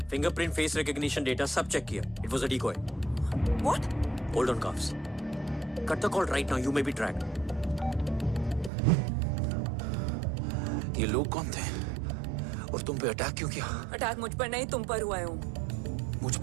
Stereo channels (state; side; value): drops out; left; at 8.7 s